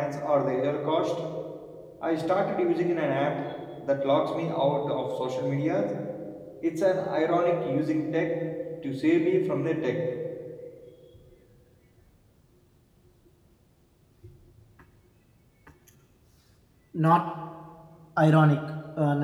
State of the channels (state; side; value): identical; both; correlation 1.00